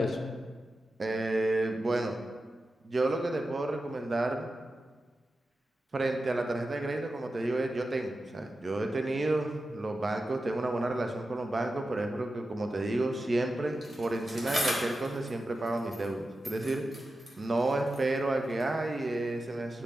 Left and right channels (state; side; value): normal; both; correlation 0.92